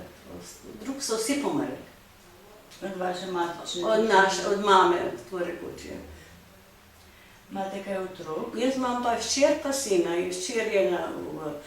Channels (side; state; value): both; identical; correlation 1.00